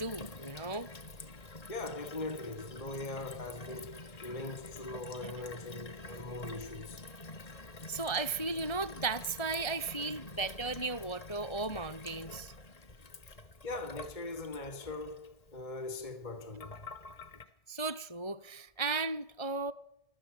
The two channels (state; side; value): late; right; 1.7 ms